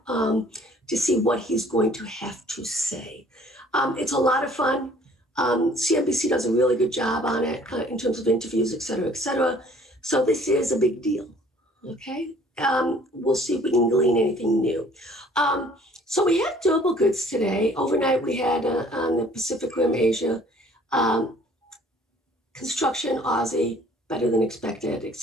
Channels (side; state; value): both; normal; correlation 0.56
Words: to see what he's going to have to say. It's a lot of fun. CNBC does a really good job on it in terms of interviews, et cetera, et cetera. So this is a big deal, okay? We'll see if we can glean anything new. So we had durable goods today. Overnight we had on the Pacific Rim, Asia, construction, Aussie, better than expected, et